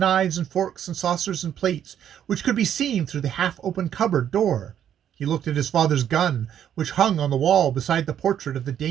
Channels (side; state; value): left; quieter; 9.8 dB